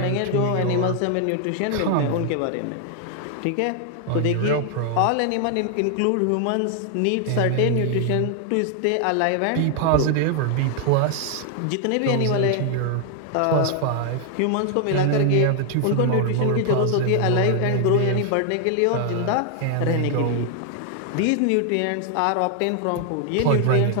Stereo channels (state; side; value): different; both; correlation 0.00